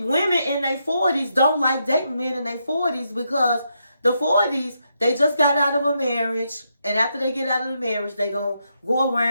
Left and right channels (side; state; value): both; inverted; correlation -0.81